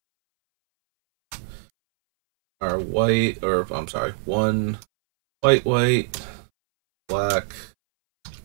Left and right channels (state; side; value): silent; left; 64 dB below the other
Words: Our white, or I'm sorry, 1 white, black,